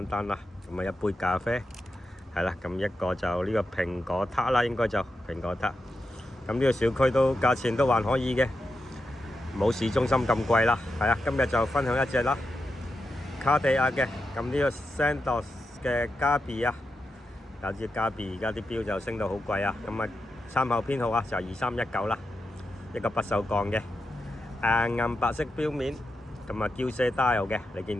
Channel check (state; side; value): normal; both; correlation 0.88